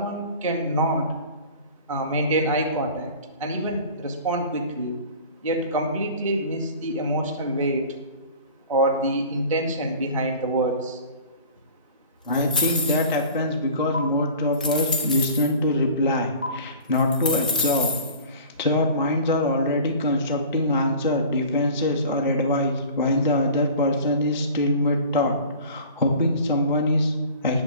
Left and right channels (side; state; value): both; inverted; correlation -0.42